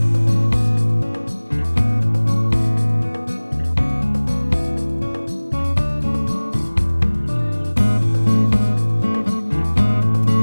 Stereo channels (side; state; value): both; inverted; correlation -1.00